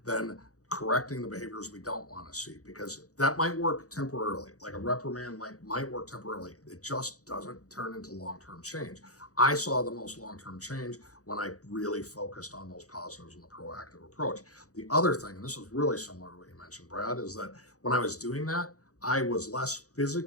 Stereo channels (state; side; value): late; right; 0.66 ms